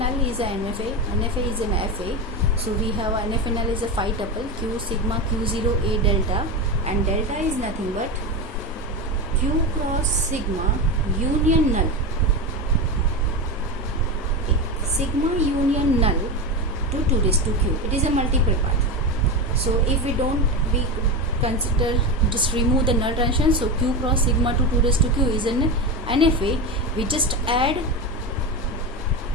is a NFA is an FA. So we have NFA null is a phi tuple Q sigma Q0 A delta, and delta is nothing but Q cross sigma union null. Okay. Sigma union null to 2 raised to Q. It is a multiple part. So if we consider, just remove the null transition, so Q cross sigma to 2 raised to Q is an NFA. We just add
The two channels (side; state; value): both; normal; correlation 0.18